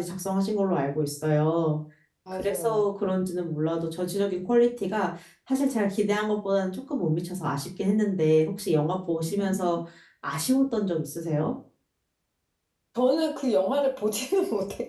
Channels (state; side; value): identical; both; correlation 1.00